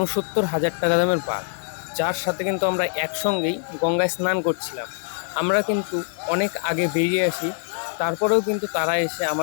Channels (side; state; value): right; silent; digital silence